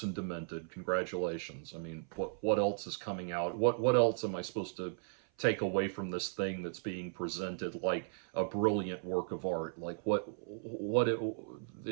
and demented. Congratulations. I mean, what else is coming out? What else am I supposed to take away from this thing that's being presented like a brilliant work of art? Like,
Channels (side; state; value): left; silent; 54 dB below the other